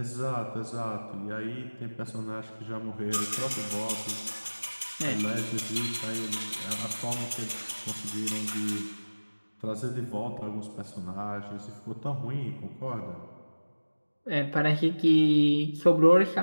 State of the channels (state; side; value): inverted; both; correlation -1.00